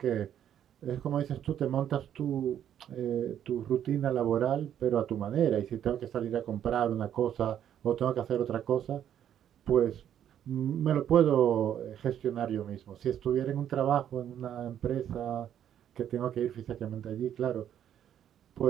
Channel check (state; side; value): quieter; left; 10.1 dB